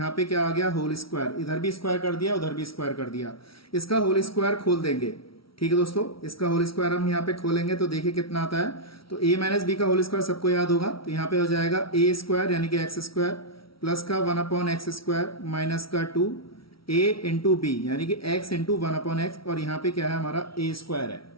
पे क्या आ गया, होल स्क्वायर, इधर भी स्क्वायर कर दिया, उधर भी स्क्वायर कर दिया। इसका होल स्क्वायर खोल देंगे। ठीक है दोस्तों, इसका होल स्क्वायर हम यहाँ पे खोलेंगे तो देखिए कितना आता है। तो a माइनस बी का होल स्क्वायर सबको याद होगा, तो यहाँ पे हो जाएगा a स्क्वायर यानी कि x स्क्वायर प्लस का 1/x स्क्वायर माइनस का 2a इंटू बी यानी कि x इंटू 1/x, और यहाँ पे क्या है, हमारा a स्क्वायर है।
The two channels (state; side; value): late; right; 0.75 ms